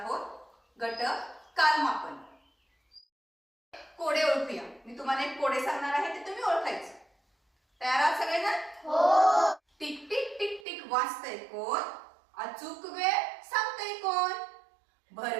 गट कालमापन. कोडे ओळखूया. मी तुम्हाला एक कोडे सांगणार आहे ते तुम्ही ओळखायचे. तयार आहात सगळेजण? हो. टिक टिक टिक टिक वाजतंय कोण? अचूक वेळ सांगतंय कोण?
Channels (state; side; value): drops out; left; at 10.7 s